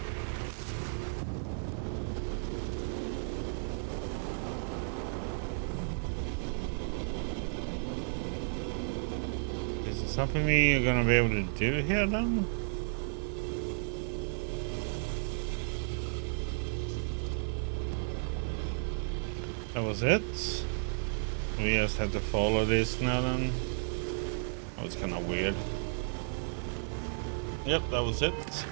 Is it something we're gonna be able to do here then? That was it? We just have to follow this now then? That was kinda weird. Yep, that was it.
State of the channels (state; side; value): silent; left; digital silence